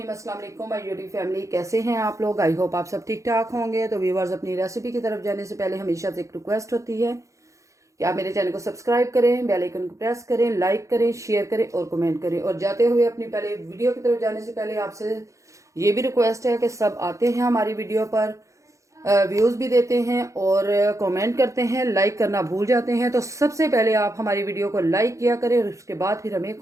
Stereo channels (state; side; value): late; left; 0.15 ms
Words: अस्सलाम वालेकुम माय यूट्यूब फैमिली, कैसे हैं आप लोग? आई होप आप सब ठीक ठाक होंगे। तो व्यूवर्स, अपनी रेसिपी की तरफ जाने से पहले हमेशा से एक रिक्वेस्ट होती है कि आप मेरे चैनल को सब्सक्राइब करें, बेल आइकन को प्रेस करें, लाइक करें, शेयर करें और कमेंट करें। और जाते हुए अपनी पहले वीडियो की तरफ जाने से पहले आपसे ये भी रिक्वेस्ट है कि सब आते हैं हमारी वीडियो पर, व्यूज़ भी देते हैं और कमेंट करते हैं, लाइक करना भूल जाते हैं। तो सबसे पहले आप हमारी वीडियो को लाइक किया करें और उसके बाद फिर हमें